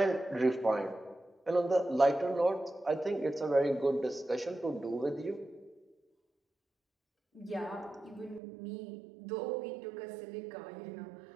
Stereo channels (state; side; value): drops out; left; at 8.4 s